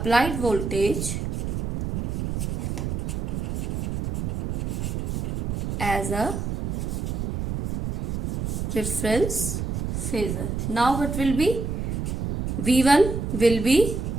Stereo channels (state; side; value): noise; right; rumble, 2 dB below the sound